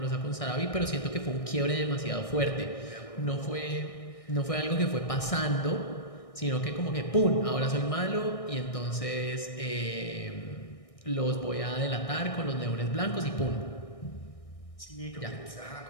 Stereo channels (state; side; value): late; right; 1.6 ms